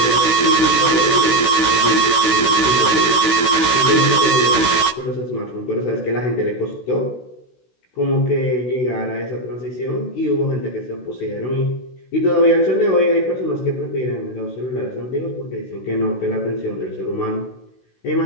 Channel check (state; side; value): late; right; 16 ms